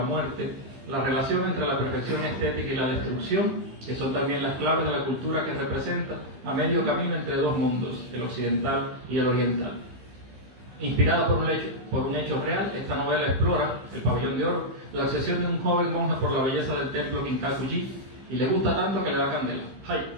muerte, la relación entre la perfección estética y la destrucción, que son también las claves de la cultura que representa a medio camino entre dos mundos, el occidental y el oriental. Inspirada por un hecho real, esta novela explora, El Pabellón de Oro, la obsesión de un joven monje por la belleza del templo Kinkaku-ji, y le gusta tanto que le da candela. ¡Ay!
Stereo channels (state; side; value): late; left; 15 ms